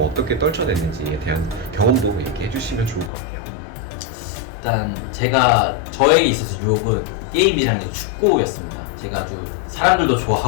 어떻게 떨쳐냈는지에 대한 경험도 얘기해 주시면 좋을 것 같아요. 일단 저에게 있어서 유혹은 게임이랑 축구였습니다. 제가 아주 사람들도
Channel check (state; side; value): drops out; right; at 3.1 s